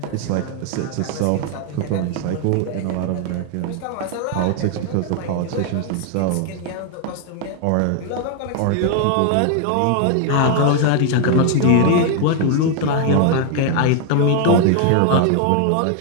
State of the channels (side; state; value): both; different; correlation 0.00